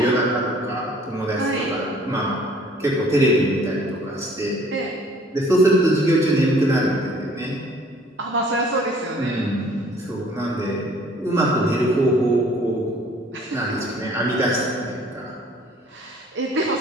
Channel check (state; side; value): normal; both; correlation 0.55